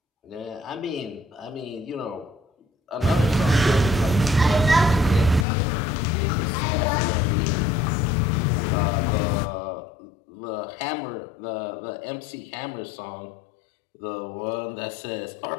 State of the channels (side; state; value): right; drops out; at 5.5 s